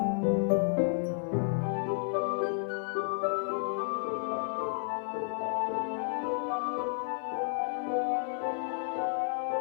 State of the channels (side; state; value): right; silent; digital silence